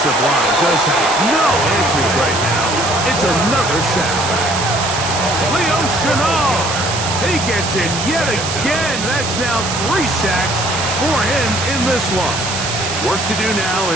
line just has no answers right now. It's another sack. Leo Chenal, he gets it yet again. That's now 3 sacks for him in this one. Work to do now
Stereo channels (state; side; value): noise; right; hiss, 4 dB below the sound